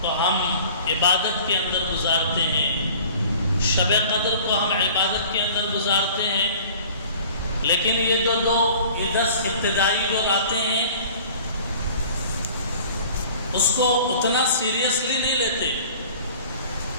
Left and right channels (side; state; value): both; inverted; correlation -0.47